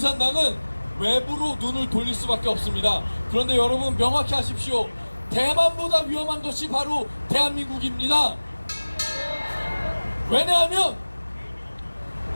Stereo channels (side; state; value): both; inverted; correlation -1.00